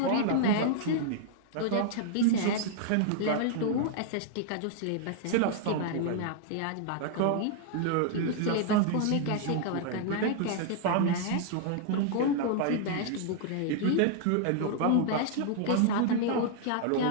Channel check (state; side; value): different; both; correlation -0.01